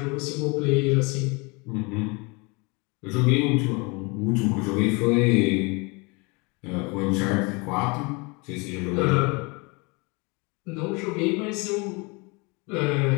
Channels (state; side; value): quieter; right; 28.6 dB